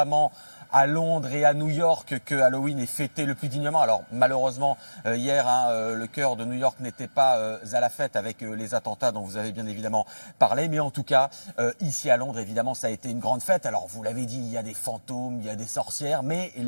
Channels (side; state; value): both; inverted; correlation -1.00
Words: à Londres et à New York, que Halloween est fêté le plus dignement. Alors, malheureusement, hier, le cœur de New York n'était pas à la fête avec les attentats dont vous avez bien évidemment parlé. Mais en tout cas, ici à Londres, évidemment, ça a été une grande fête. Alors, vous l'avez dit, il y a des fantômes, il y a des sorcières, mais